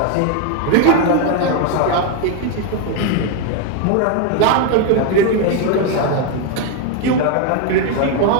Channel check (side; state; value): both; different; correlation 0.01